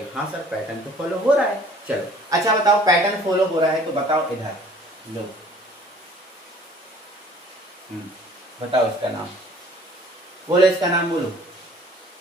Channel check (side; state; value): both; normal; correlation 0.53